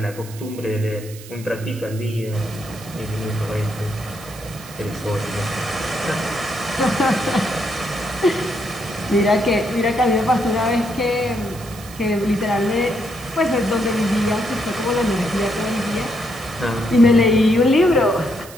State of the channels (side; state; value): right; noise; hiss, 18 dB below the sound